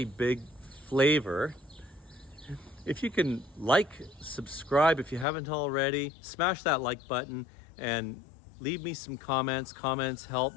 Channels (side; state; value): right; drops out; at 5.2 s